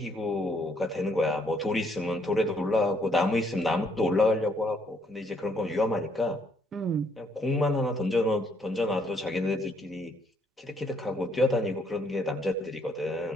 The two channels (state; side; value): normal; both; correlation 0.69